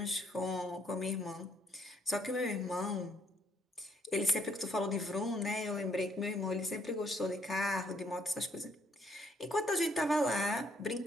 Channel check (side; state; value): both; normal; correlation 0.69